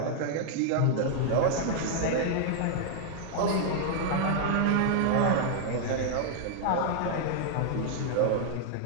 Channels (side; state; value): both; different; correlation 0.00